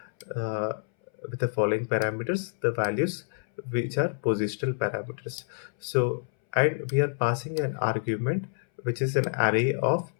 with the following parameters, the values, which are positional parameters. So, and we are passing an argument which is an array of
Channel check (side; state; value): right; silent; 59 dB below the other